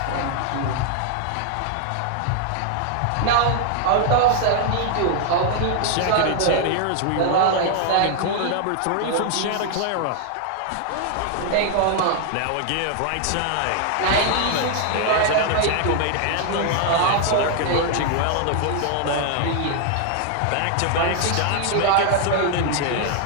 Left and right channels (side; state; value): both; different; correlation 0.00